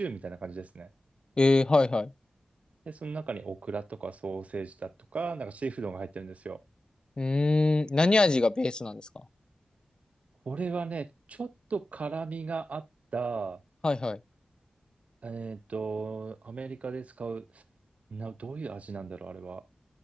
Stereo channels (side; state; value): both; normal; correlation 0.93